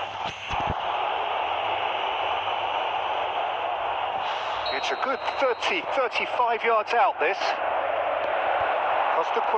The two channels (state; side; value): identical; both; correlation 1.00